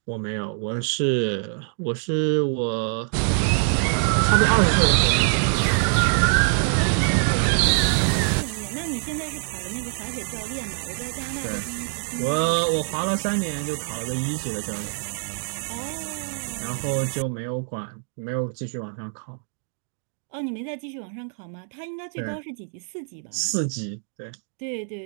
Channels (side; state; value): left; silent; 59 dB below the other